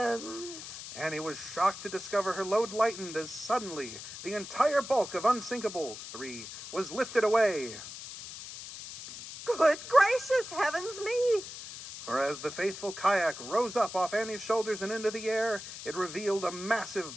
Annie was shocked to discover her load lightened as suddenly the entire bulk of unsinkable 3 was lifted away. Good gracious heavens me! For as the faithful kayak rose up off Annie's shoulders and into the air, it revealed a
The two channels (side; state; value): left; noise; hiss, 11 dB below the sound